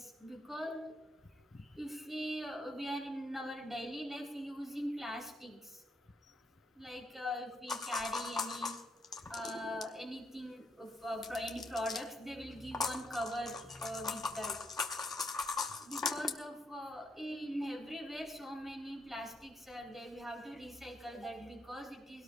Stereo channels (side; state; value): both; normal; correlation 0.76